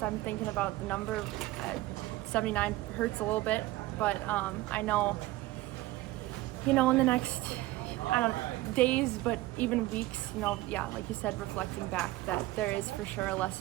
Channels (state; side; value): quieter; left; 17.8 dB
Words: I'm thinking about the number. 79 hurts a little bit, but I know, in the next, days, but even weeks, like you said, reflecting back, that there is for sure a